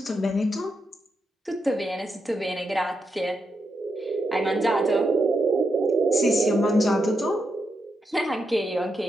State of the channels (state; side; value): normal; both; correlation 0.83